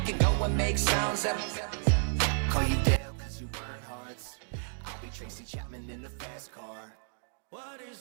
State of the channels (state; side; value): silent; left; digital silence